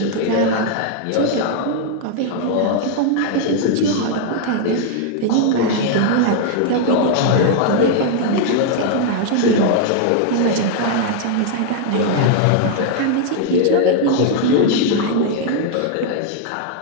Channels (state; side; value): different; both; correlation 0.00